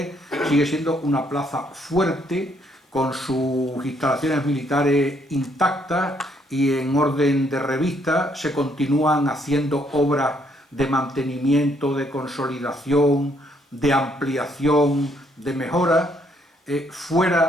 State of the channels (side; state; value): both; normal; correlation 0.70